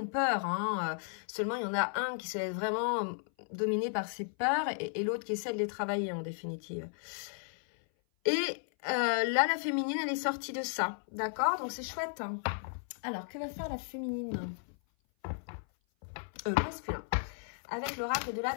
peur. Hein. Seulement, il y en a un qui se laisse vraiment dominer par ses peurs et l'autre qui essaie de les travailler en définitive. Et là, la féminine, elle est sortie de ça. D'accord? Donc, c'est chouette. Hein. Alors, que va faire la féminine? Masculin. Avec l'oracle de la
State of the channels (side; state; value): right; silent; 55 dB below the other